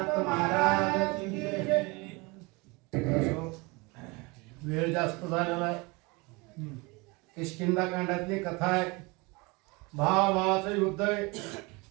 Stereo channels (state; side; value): quieter; left; 26.0 dB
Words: महाराज की जय. वेळ जास्त झालेला आहे. किष्किंधा कांडातली कथा आहे. भावाचं युद्ध आहे.